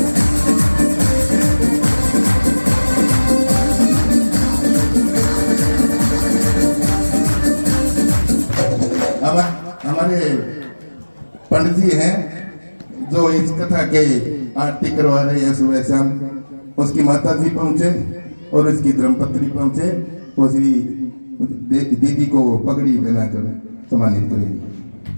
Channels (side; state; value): both; inverted; correlation -1.00